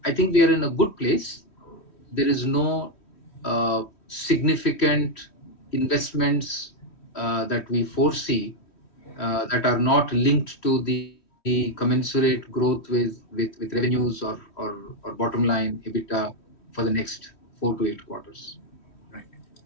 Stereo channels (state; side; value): late; right; 3.1 ms